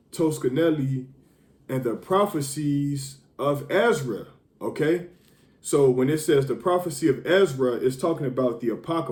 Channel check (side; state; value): both; identical; correlation 1.00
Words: Toscanelli and the prophecies of Ezra. Okay? So when it says the prophecy of Ezra, it's talking about the